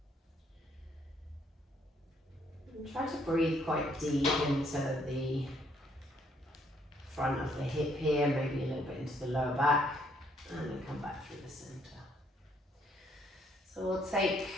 And try to breathe quite deep into the front of the hip here, maybe a little bit into the lower back, and then come back through the centre. So we'll take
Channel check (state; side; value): normal; both; correlation 0.68